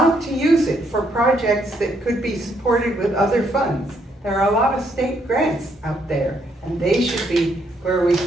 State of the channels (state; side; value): normal; both; correlation 0.73